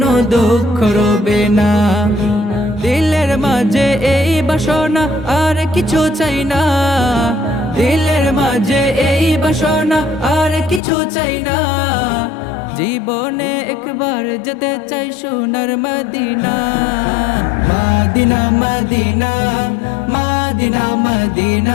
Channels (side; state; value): right; drops out; at 10.8 s